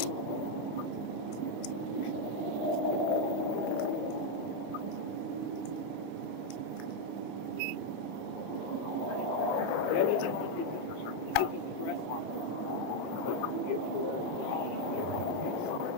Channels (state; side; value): late; right; 8.2 ms